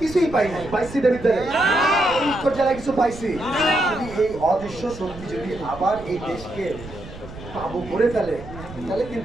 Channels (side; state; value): right; noise; rumble, 14 dB below the sound